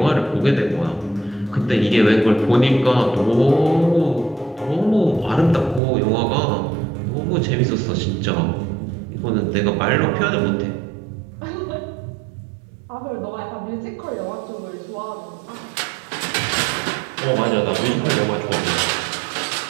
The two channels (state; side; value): drops out; left; at 5.8 s